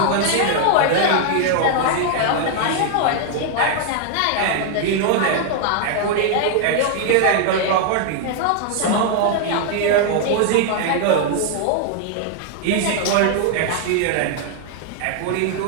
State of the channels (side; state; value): both; different; correlation 0.00